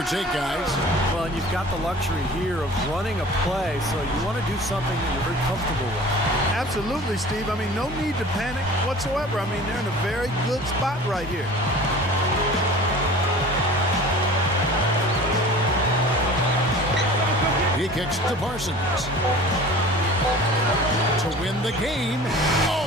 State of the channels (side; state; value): both; normal; correlation 0.42